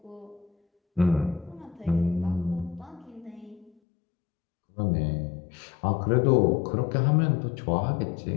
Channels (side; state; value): right; drops out; at 3.7 s